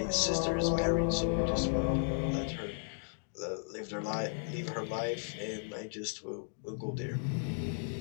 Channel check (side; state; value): right; silent; digital silence